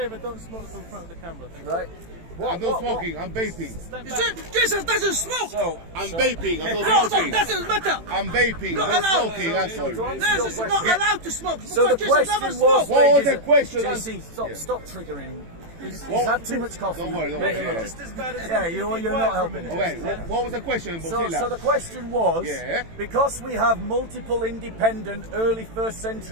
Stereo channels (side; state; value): left; late; 18 ms